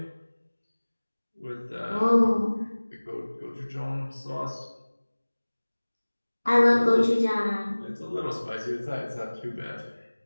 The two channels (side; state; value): both; inverted; correlation -1.00